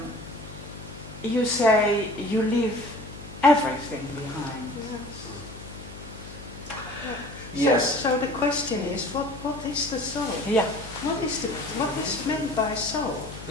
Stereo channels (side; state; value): left; noise; hum, 14 dB below the sound